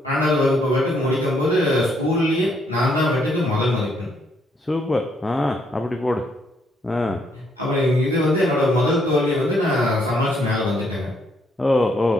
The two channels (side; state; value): both; normal; correlation 0.71